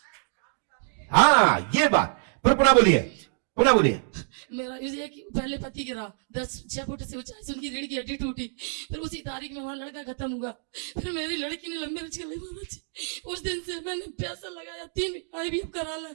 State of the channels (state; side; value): silent; left; digital silence